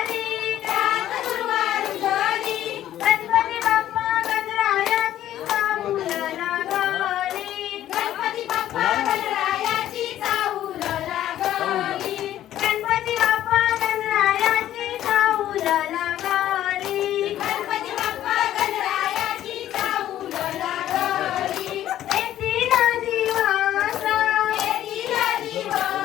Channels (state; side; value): quieter; right; 12.5 dB